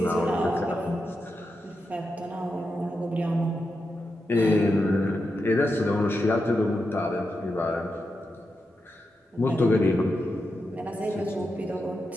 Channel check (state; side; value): normal; both; correlation 0.87